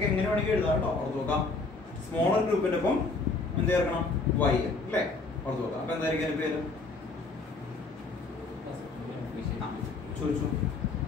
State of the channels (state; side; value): quieter; right; 3.7 dB